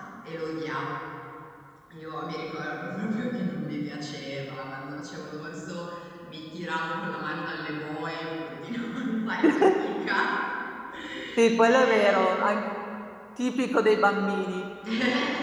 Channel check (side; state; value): both; identical; correlation 1.00